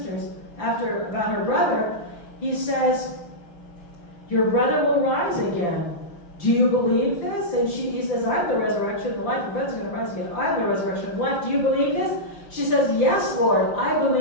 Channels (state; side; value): late; right; 5.9 ms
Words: about her brother, he says, your brother will rise again. Do you believe this? And he says, I'm the resurrection and the life. Your brother's going to rise again. I'm the resurrection and life. Do you believe this? She says, yes, Lord, I